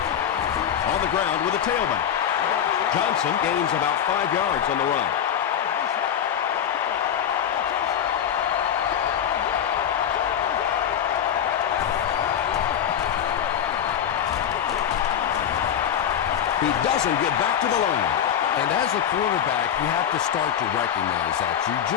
On the ground with a tailback. Johnson gains about 5 yards on the run. He doesn't get back to the line. And as a quarterback, you have to start to recognize that. You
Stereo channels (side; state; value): right; quieter; 9.2 dB